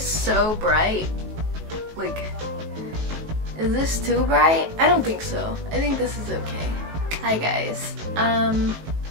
bright. Like, is this too bright? I don't think so. I think this is okay. Hi guys.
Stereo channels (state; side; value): late; left; 19 ms